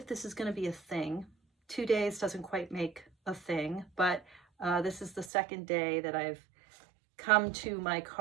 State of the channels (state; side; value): drops out; left; at 5.3 s